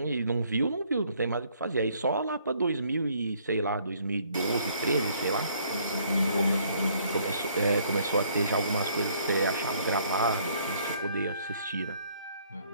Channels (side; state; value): both; inverted; correlation -0.64